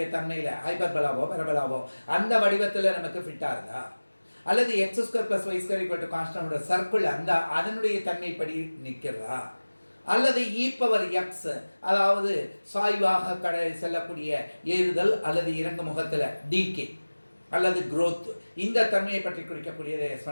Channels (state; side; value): inverted; both; correlation -1.00